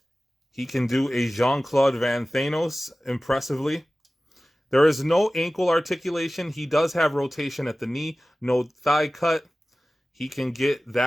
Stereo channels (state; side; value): normal; both; correlation 0.97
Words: He can do a Jean-Claude Van Thanos impressively. There is no ankle articulation. He does have rotation at the knee, no thigh cut. He can get